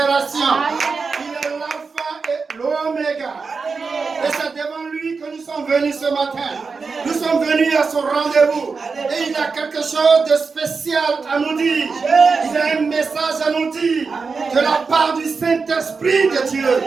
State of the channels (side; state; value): left; quieter; 4.8 dB